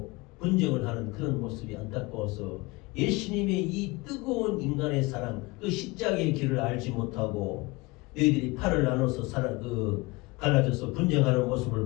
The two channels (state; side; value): quieter; right; 23.7 dB